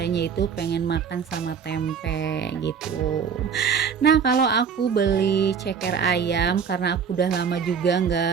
itu pengen makan sama tempe gitu. Nah, kalau aku beli ceker ayam karena aku udah lama juga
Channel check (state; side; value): quieter; left; 6.7 dB